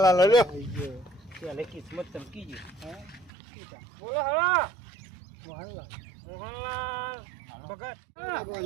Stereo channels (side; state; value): left; drops out; at 3.3 s